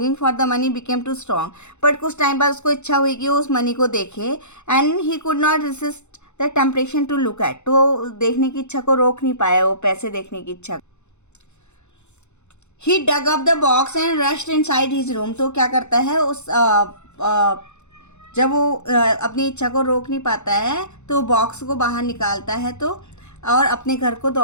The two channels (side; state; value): right; late; 0.83 ms